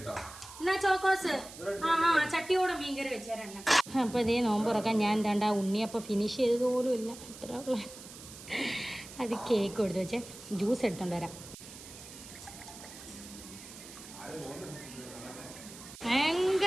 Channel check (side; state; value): right; noise; hiss, 15 dB below the sound